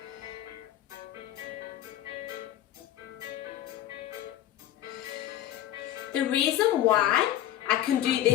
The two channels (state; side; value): quieter; right; 12.5 dB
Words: The reason why I can do